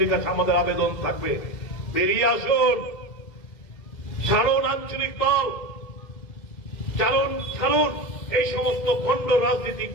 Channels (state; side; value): late; right; 2.1 ms